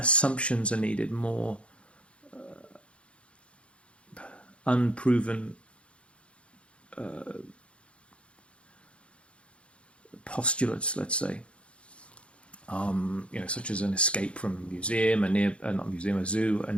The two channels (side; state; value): right; late; 0.060 ms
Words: are needed, more unproven postulates, let's say, such as an escape from a museum, a zoo, a